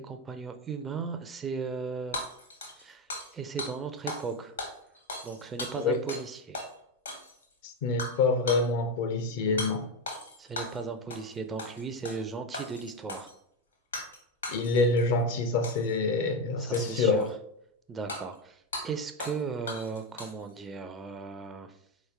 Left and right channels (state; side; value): normal; both; correlation 0.11